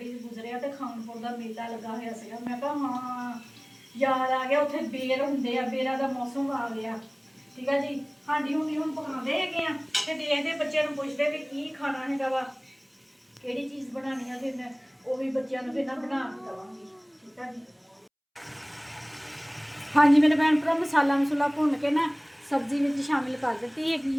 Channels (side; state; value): both; identical; correlation 1.00